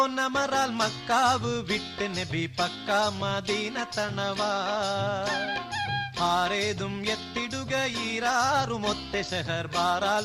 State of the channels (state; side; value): identical; both; correlation 1.00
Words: മക്കാവ് വിട്ട് നബി പക്ക മദീന തണവാ ആരേതും എത്തിടുക ഈരാറുമൊത്തെ ഷഹർ